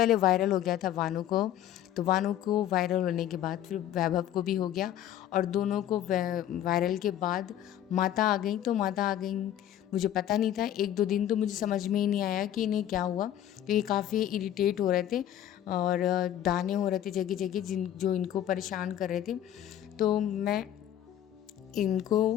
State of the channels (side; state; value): right; quieter; 11.3 dB